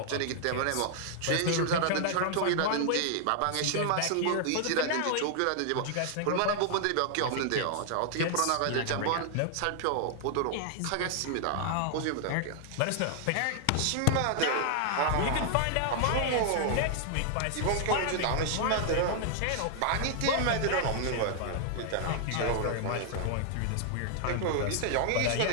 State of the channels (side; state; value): both; different; correlation 0.00